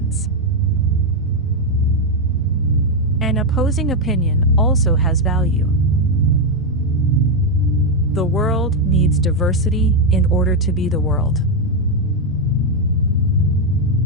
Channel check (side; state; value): left; noise; rumble, 19 dB below the sound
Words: An opposing opinion also has value. The world needs diversity in order to be the world.